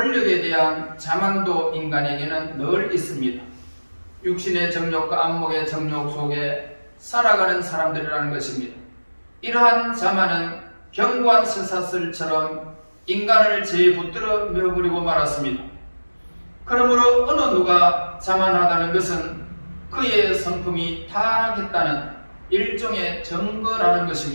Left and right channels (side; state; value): both; inverted; correlation -1.00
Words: 대한 자만도 인간에게는 늘 있습니다. 육신의 정욕과 안목의 정욕 속에 살아가는 사람들이라는 것입니다. 이러한 자만은 견고한 쇠사슬처럼 인간을 제에 붙들어 메어버리고 말았습니다. 그러므로 어느 누가 자만하다는 것은 그의 성품이 타락했다는 일종의 증거라는